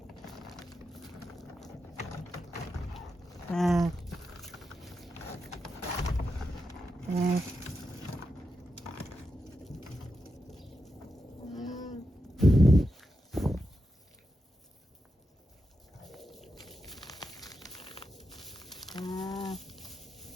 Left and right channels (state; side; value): normal; both; correlation 0.88